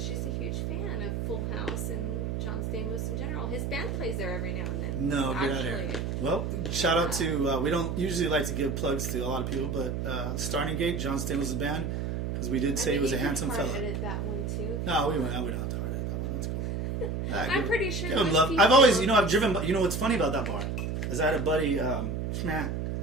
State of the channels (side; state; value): right; noise; hum, 2 dB below the sound